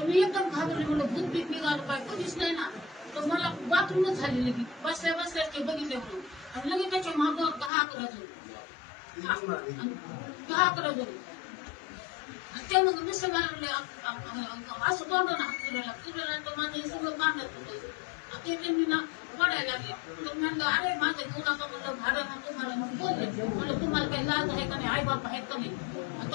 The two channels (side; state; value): right; drops out; at 7.7 s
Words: मी एकदम घाबरले म्हणलं भूत बीत निघालं पाय कधीच नाही ना. तर मला बाथरूमच झाली लगेच बसल्या बसल्या ते बघितले म्हणून आणि लगेच त्याच्या मागं 10-11 जण 10-11 जण ते मग नुसतं मला म्हणले असं तोंडानं हात फिरवला तर माझं हे सगळं पाण्यात होतं. ते त्यांनी ना पडायला लागले. तर म्हणलं अरे माझं घेऊ नका म्हणलं भाड्यानं तुम्हाला मग बोलले म्हणलं तुम्हाला काही लाज आहे का नाही आई बाप आहेत का नाही.